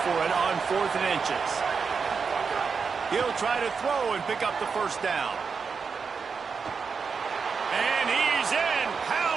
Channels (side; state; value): left; quieter; 5.5 dB